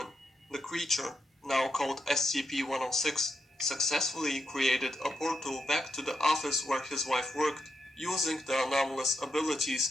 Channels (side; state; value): both; normal; correlation 0.82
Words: the creature, now called SCP-106, successfully created a portal back to the office where his wife worked, using the anomalous